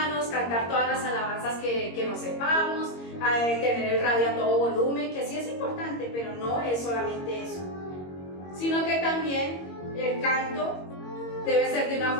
cantar todas las alabanzas que nos sepamos, tener el radio a todo volumen, que sí es importante, pero no es solamente eso, sino que también el canto debe ser de una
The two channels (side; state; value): right; late; 22 ms